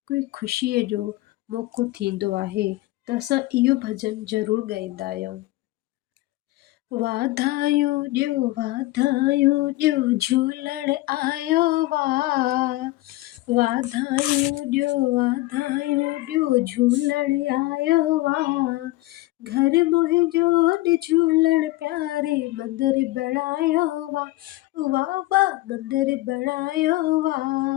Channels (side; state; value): right; quieter; 18.9 dB